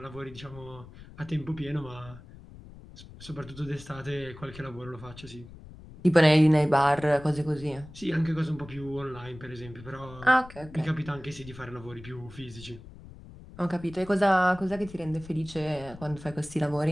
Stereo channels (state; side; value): noise; left; rumble, 17 dB below the sound